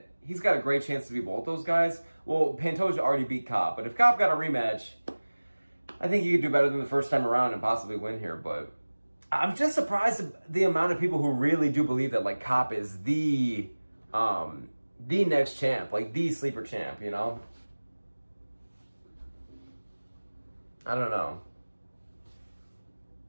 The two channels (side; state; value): both; inverted; correlation -1.00